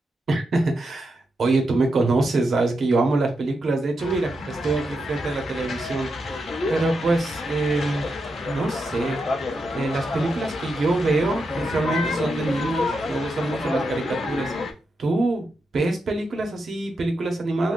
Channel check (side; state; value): both; normal; correlation 0.86